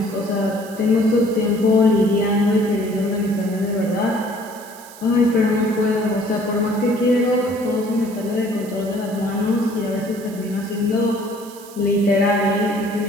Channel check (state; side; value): noise; right; hiss, 19 dB below the sound